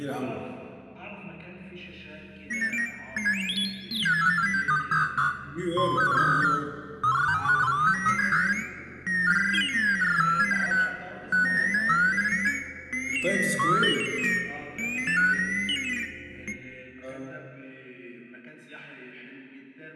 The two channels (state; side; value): identical; both; correlation 1.00